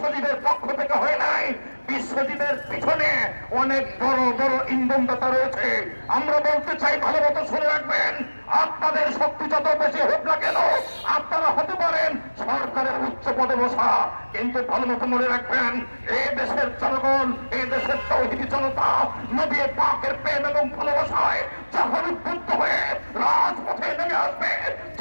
পক্ষ থেকে হয় নাই, বিশ্বজিতের পিছনে অনেক বড় বড় ইন্ধনদাতা রয়েছে। আমরা বলতে চাই, ভালো মতো শুনে রাখবেন, আপনাদের শক্তি যত বেশি হোক না কেন, আপনারা হতে পারেন সরকারের উচ্চ পদে বসা, কিন্তু ভালো মতো মনে রাখবেন এই দেশের জনগণ, এই দেশের তৌহিদি জনতা নবী পাকের প্রেম এবং ভালোবাসায় যখন উদ্বুদ্ধ হয়ে রাজপথে নেমে আসবে,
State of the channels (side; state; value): both; inverted; correlation -1.00